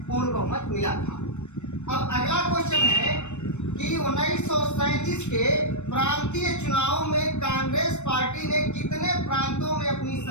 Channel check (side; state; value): right; late; 0.83 ms